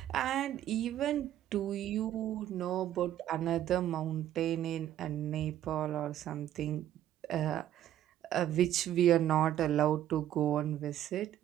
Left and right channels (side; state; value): left; quieter; 11.9 dB